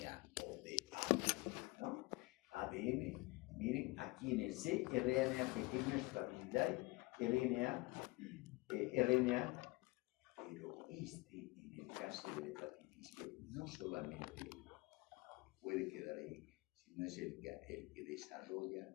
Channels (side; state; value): right; quieter; 23.5 dB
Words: o de ADN, ¿no? ADN, miren, aquí en el C, RNA pequeña estabilidad, RNA, pero en el caso de la hepatitis B, no solamente puede quedar ahí, sino es el que desarrolla